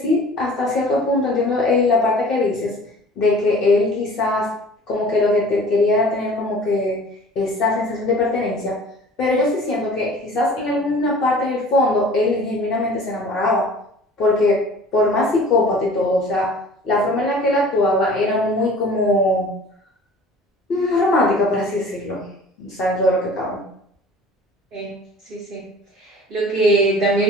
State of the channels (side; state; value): both; normal; correlation 0.46